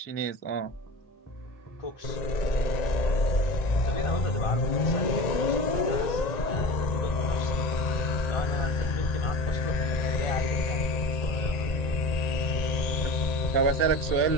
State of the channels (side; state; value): right; late; 1.9 ms